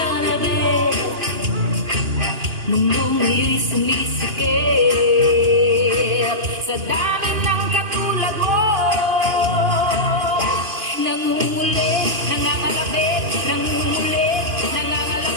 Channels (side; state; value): left; late; 2.9 ms